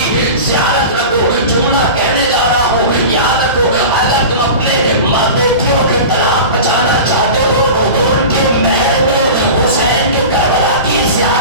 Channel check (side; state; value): both; inverted; correlation -0.32